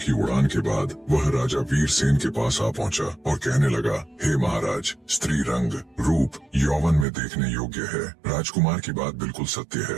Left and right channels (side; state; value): left; drops out; at 7.1 s